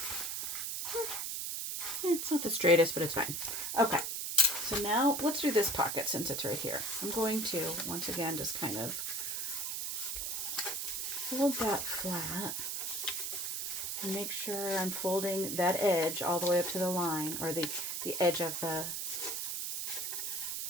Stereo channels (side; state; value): right; noise; hiss, 2 dB below the sound